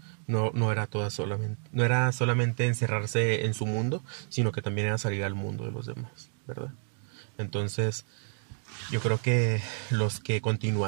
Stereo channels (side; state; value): left; silent; 58 dB below the other